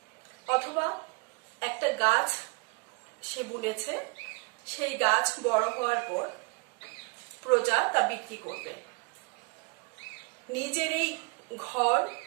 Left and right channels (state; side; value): quieter; left; 31.2 dB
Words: অথবা একটা গাছ সে বুনেছে, সেই গাছ বড় হওয়ার পর প্রজা তা বিক্রি করবে। নিজের এই ঘর